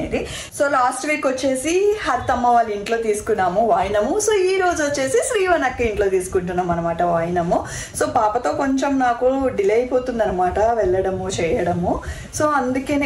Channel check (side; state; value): both; identical; correlation 1.00